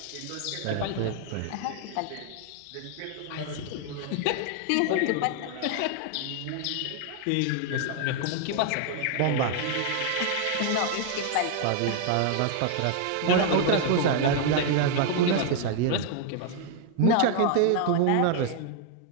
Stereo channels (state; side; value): different; both; correlation 0.00